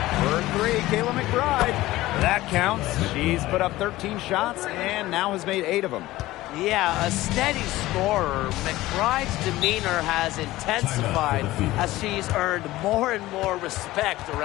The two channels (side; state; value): right; quieter; 17.2 dB